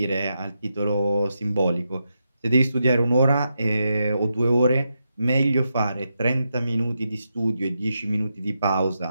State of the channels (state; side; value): inverted; both; correlation -0.85